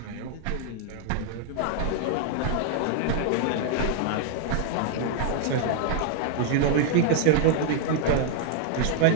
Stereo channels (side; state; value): both; different; correlation -0.01